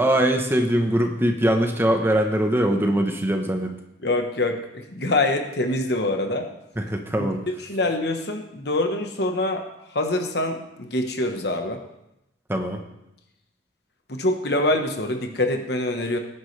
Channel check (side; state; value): both; normal; correlation 0.48